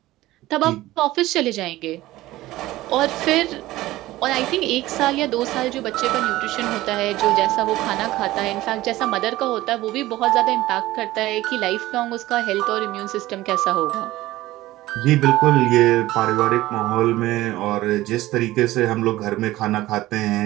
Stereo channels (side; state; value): left; quieter; 16.9 dB